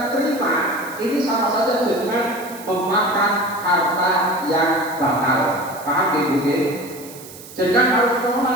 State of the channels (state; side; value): noise; right; hiss, 17 dB below the sound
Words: terima, ini sama saja jenengan memakan harta yang batal. Paham gitu? Jenengan harus